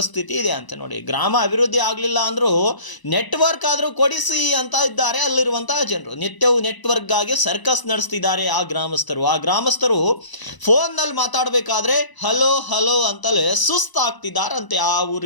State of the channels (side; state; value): right; late; 1.0 ms